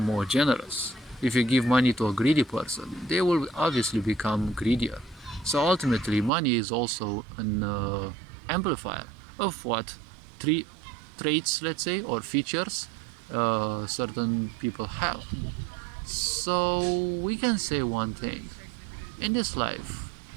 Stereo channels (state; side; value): drops out; left; at 6.3 s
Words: more generous. If you give money to a greedy person, they will obviously become greedier. So ultimately, money is also an amplifier of what traits, let's say, or features certain people have. So we can say one thing: in this life,